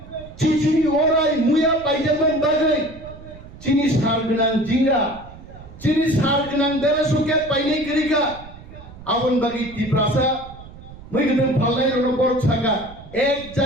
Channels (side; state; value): right; noise; rumble, 17 dB below the sound